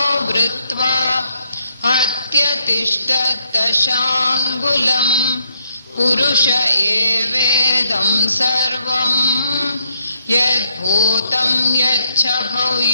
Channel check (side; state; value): both; inverted; correlation -0.74